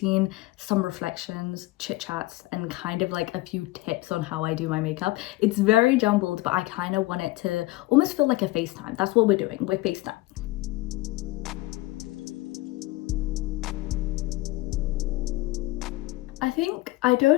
some reflections, chit chats, and kind of like a few tips on how I do my makeup. It's very jumbled, but I kind of want it to almost feel like a FaceTime. That's what we're doing. We're FaceTime. I think I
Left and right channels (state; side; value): quieter; right; 19.7 dB